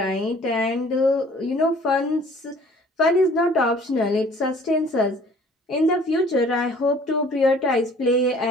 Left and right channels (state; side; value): normal; both; correlation 0.53